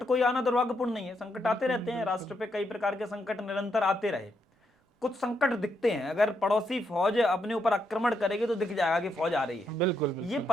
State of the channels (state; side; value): normal; both; correlation 0.79